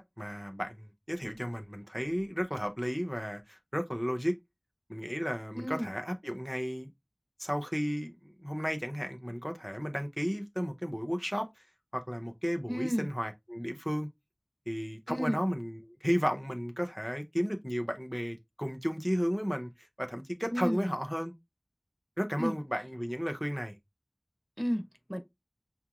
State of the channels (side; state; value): both; identical; correlation 1.00